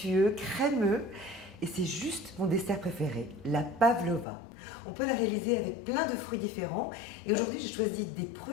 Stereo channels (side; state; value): right; drops out; at 4.2 s